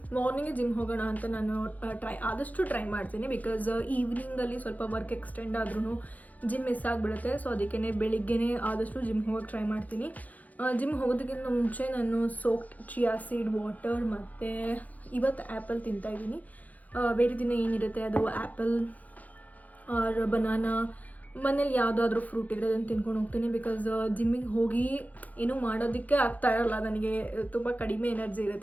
morning gym ಹೋಗೋಣ ಅಂತ ನಾನು ಆದಷ್ಟು try ಮಾಡ್ತೀನಿ, ಬಿಕಾಸ್ ಈವ್ನಿಂಗಲ್ಲಿ ಸ್ವಲ್ಪ ವರ್ಕ್ ಎಕ್ಸ್ಟೆಂಡ್ ಆದ್ರೂ ಜಿಮ್ ಮಿಸ್ ಆಗಿಬಿಡುತ್ತೆ. ಸೊ ಅದಕ್ಕೇ ಬೆಳಿಗ್ಗೆನೇ ಆದಷ್ಟು ಜಿಮ್ ಹೋಗೋಕ್ಕೆ ಟ್ರೈ ಮಾಡ್ತೀನಿ. ಜಿಮ್ ಹೋಗೋದಕ್ಕಿಂತ ಮುಂಚೆ ನಾನು ಸೋಕ್ಡ್ ಚಿಯಾ ಸೀಡ್ ವಾಟರ್ ಮತ್ತು ಇವತ್ತು ಆ್ಯಪಲ್ ತಿಂತಾಯಿದ್ದೀನಿ. ಬೇರೆ ದಿನ ಏನಿರುತ್ತೆ ಅದು ಆ್ಯಪಲ್ ಆರ್ ಬನಾನಾ, ಮನೇಲಿ ಯಾವುದಾದ್ರೂ ಫ್ರೂಟ್ ಇದ್ರೆ ಅದನ್ನು ತಿನ್ಕೊಂಡು ಹೋಗ್ತೀನಿ. ಬಿಕಾಸ್ ಜಿಮ್ಮಿಗೆ ಹೋಗಿ ಏನೂ ಮಾಡೋದಕ್ಕೆ ಆಗ್ತಾ ಇರಲ್ಲ, ನನಗೆ ತುಂಬ ಕಡಿಮೆ ಎನರ್ಜಿ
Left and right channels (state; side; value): late; right; 0.078 ms